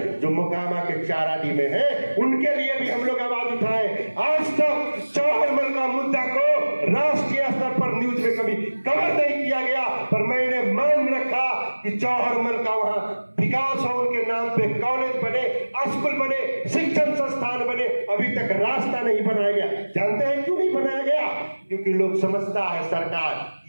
जो मोकामा के चाराडी में है, उनके लिए भी हम लोग आवाज उठाए। आज तक जौहरमल का मुद्दा को राष्ट्रीय स्तर पर न्यूज में कभी कवर नहीं किया गया, पर मैंने मान रखा कि जौहरमल का वहां विकास हो, उनके नाम पे कॉलेज बने, स्कूल बने, शिक्षण संस्थान बने। अभी तक रास्ता नहीं बनाया गया। जानते हैं क्यों नहीं बनाया गया? क्योंकि लोग समझता है सरकार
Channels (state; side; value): inverted; both; correlation -1.00